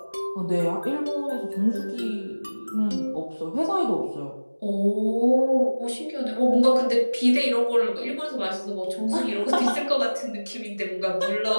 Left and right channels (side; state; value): both; inverted; correlation -1.00